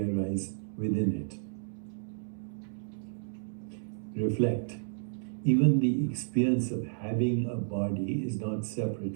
arise within it? Reflect. Even the experience of having a body is not separate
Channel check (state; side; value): silent; left; 57 dB below the other